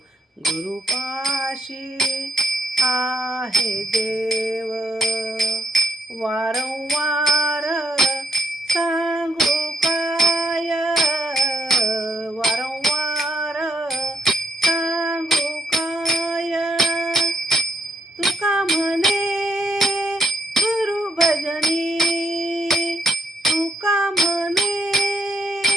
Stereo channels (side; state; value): both; normal; correlation 0.72